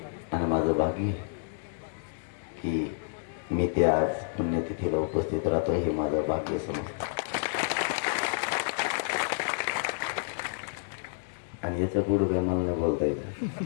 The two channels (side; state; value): right; silent; digital silence